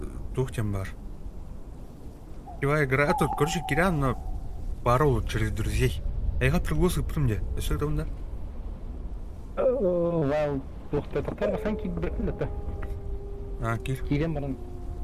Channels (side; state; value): both; identical; correlation 1.00